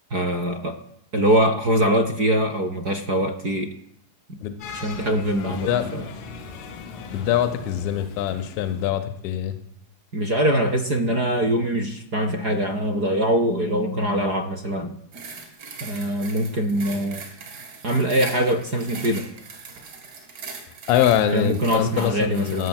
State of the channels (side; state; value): left; late; 4.8 ms